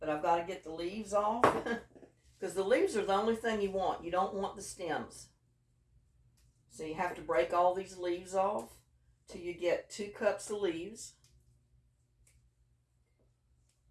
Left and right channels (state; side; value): identical; both; correlation 1.00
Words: I've got to get the leaves off because the leaves are the only thing you want. You don't want the stems, so you have to break all these leaves off till you get 2 cups of leaves.